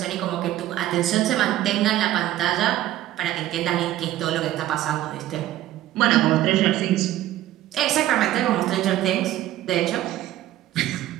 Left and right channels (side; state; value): left; quieter; 13.9 dB